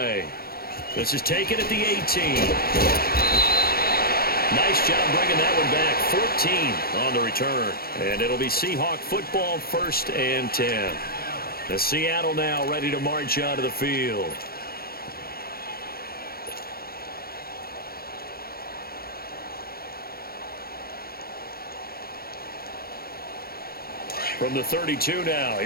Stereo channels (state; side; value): late; right; 0.44 ms